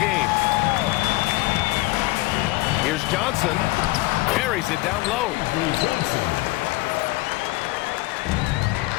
Here's Johnson. Carries it down low.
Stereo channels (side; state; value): right; quieter; 20.2 dB